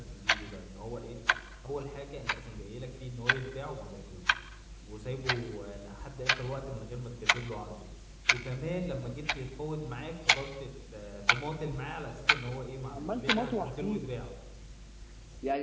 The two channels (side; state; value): both; identical; correlation 1.00